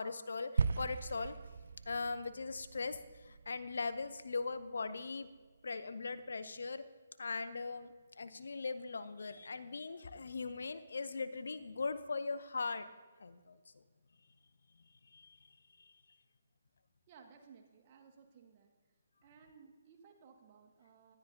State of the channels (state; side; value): inverted; both; correlation -0.87